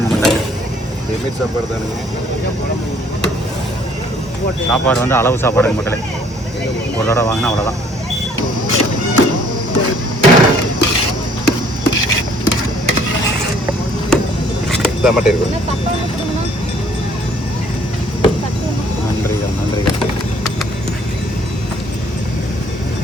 மக்களே. சாப்பாடு தானே, சாப்பாடு வந்து அளவு சாப்பாடுங்க மக்களே. ஒரு தடவை வாங்கினா அவ்வளோதான். நன்றிகள் நன்றிகள்.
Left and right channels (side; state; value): both; normal; correlation 0.60